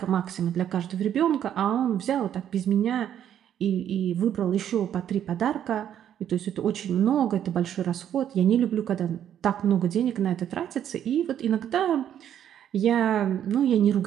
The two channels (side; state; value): left; quieter; 10.0 dB